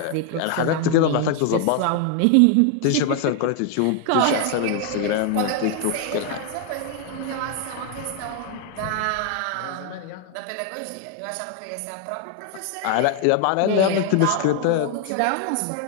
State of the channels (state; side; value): different; both; correlation 0.01